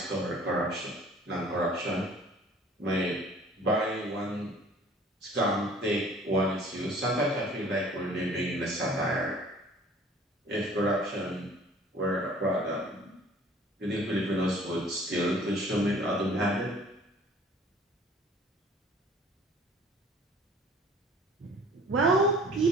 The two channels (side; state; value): both; normal; correlation 0.51